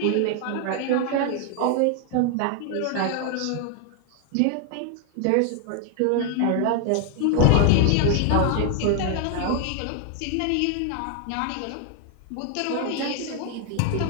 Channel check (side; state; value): both; different; correlation 0.00